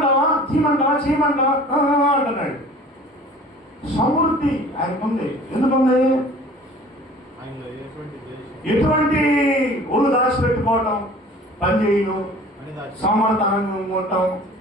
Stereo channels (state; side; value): normal; both; correlation 0.46